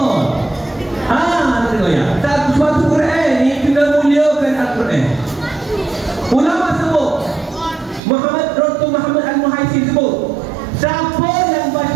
Tengok ya. Suatu Quran ni kena muliakan Al-Quran. Ulama sebut, Dr. Muhammad Al-Muhaisib sebut, siapa yang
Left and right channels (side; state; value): left; drops out; at 8.0 s